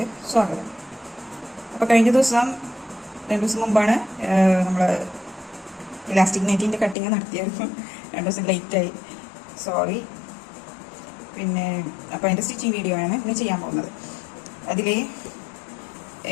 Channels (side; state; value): right; drops out; at 7.0 s